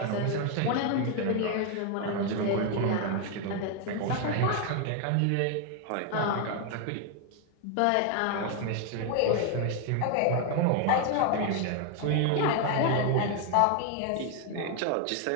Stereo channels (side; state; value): both; different; correlation 0.01